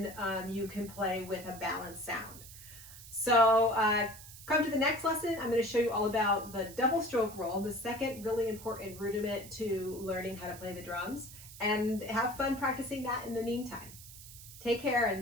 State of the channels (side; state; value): right; noise; hiss, 16 dB below the sound